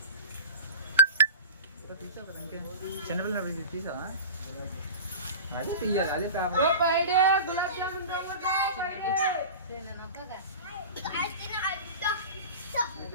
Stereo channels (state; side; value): inverted; both; correlation -0.31